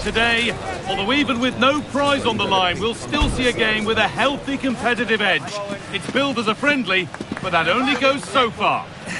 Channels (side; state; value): both; identical; correlation 1.00